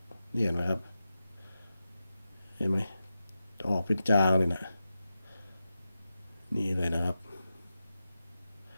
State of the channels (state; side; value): inverted; both; correlation -0.92